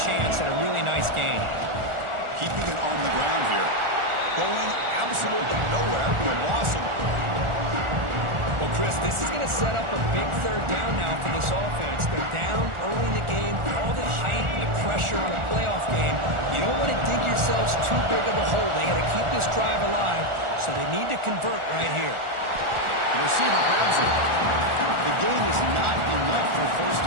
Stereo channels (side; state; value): left; late; 1.4 ms